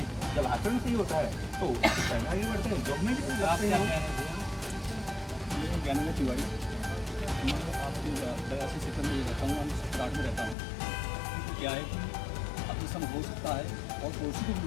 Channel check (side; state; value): right; drops out; at 10.6 s